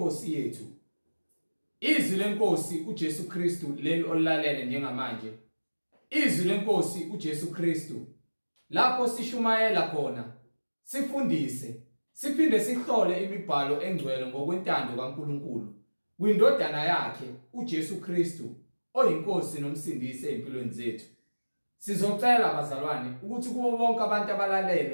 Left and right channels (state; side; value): inverted; both; correlation -1.00